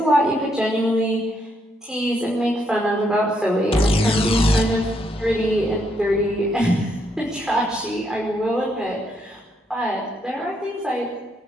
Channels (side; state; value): both; normal; correlation 0.76